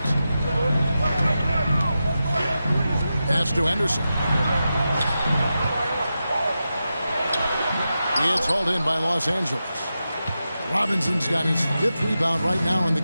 Pass to Henderson. It's hauled in by Los Angeles. Robinson's got his 5th rebound right now in the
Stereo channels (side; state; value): both; inverted; correlation -0.90